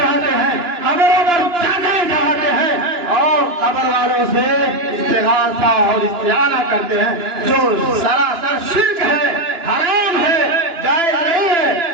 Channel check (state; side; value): late; left; 2.9 ms